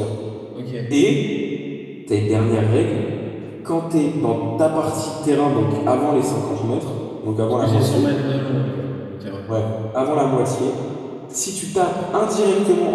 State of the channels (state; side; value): identical; both; correlation 1.00